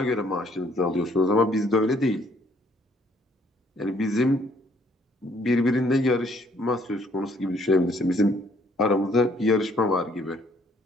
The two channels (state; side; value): normal; both; correlation 0.64